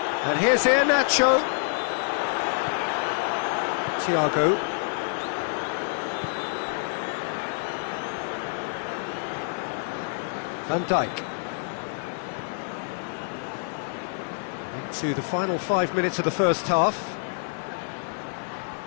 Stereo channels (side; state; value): right; silent; digital silence